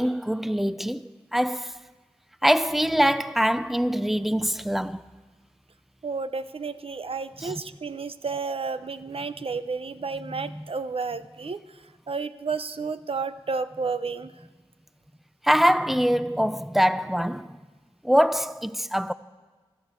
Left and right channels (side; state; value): both; normal; correlation 0.91